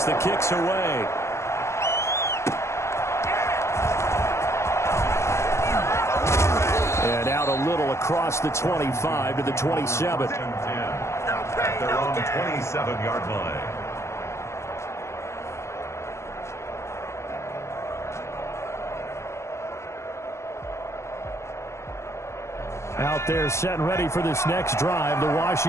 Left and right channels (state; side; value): late; right; 0.13 ms